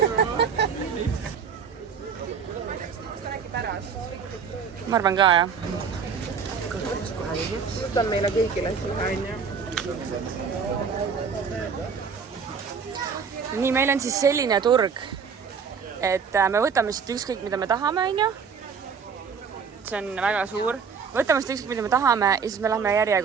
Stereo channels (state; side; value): quieter; left; 6.2 dB